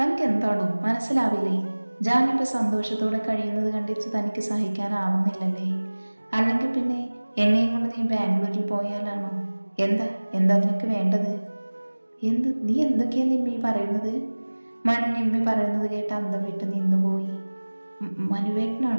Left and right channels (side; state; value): both; inverted; correlation -1.00